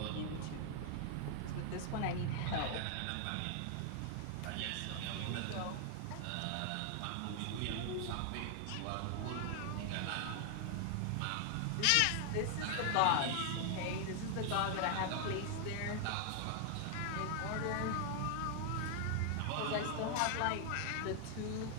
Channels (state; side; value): different; both; correlation 0.00